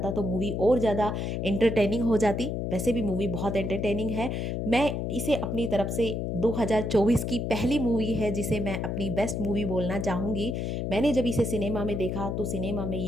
तो मूवी और ज़्यादा एंटरटेनिंग हो जाती। वैसे भी मूवी बहुत एंटरटेनिंग है। मैं इसे अपनी तरफ से 2024 2024 की पहली मूवी है जिसे मैं अपनी बेस्ट मूवी बोलना चाहूँगी। मैंने जब इसे सिनेमा में देखा तो सिनेमा में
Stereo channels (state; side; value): noise; left; hum, 2 dB below the sound